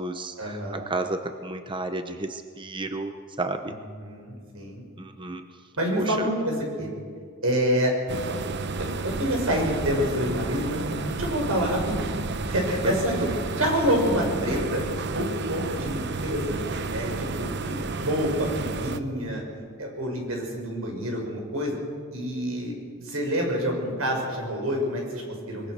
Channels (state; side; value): normal; both; correlation 0.19